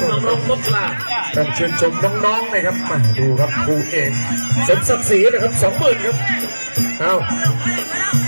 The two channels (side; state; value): both; inverted; correlation -1.00